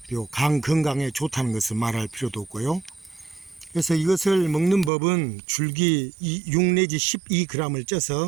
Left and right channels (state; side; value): drops out; left; at 4.9 s